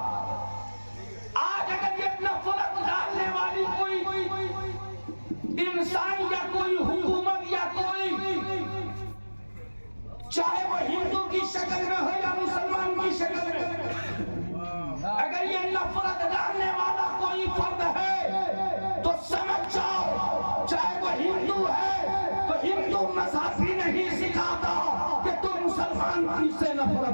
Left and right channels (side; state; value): both; inverted; correlation -1.00